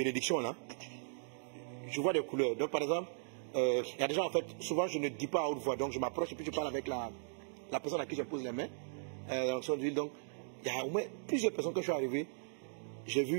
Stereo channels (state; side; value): silent; left; digital silence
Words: là, je vois des couleurs. Donc, par exemple, il y a des gens, en fait, souvent, je ne dis pas à haute voix. Donc, je m'approche et puis je parle avec la personne à qui je pose les mains. L'onction d'huile. Donc, il y a au moins plusieurs personnes quand je suis arrivé. J'ai